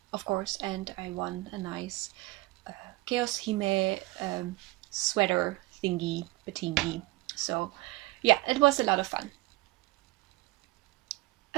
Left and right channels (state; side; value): quieter; left; 21.0 dB